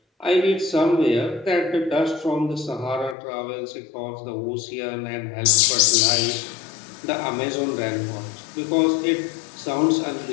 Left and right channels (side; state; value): right; drops out; at 3.2 s